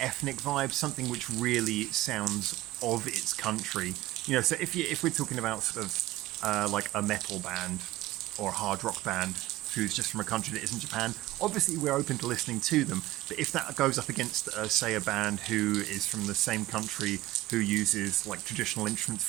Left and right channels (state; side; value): quieter; left; 16.7 dB